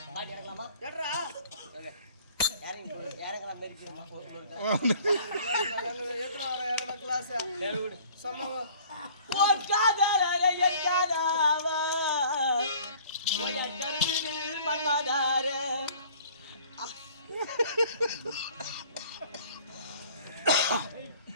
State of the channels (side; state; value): both; inverted; correlation -0.51